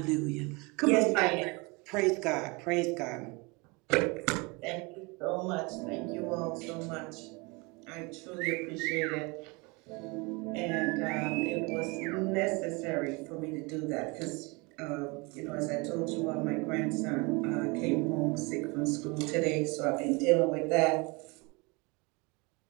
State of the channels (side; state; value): left; quieter; 27.5 dB